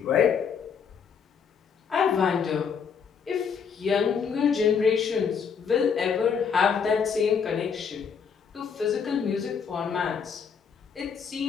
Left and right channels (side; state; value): right; quieter; 6.6 dB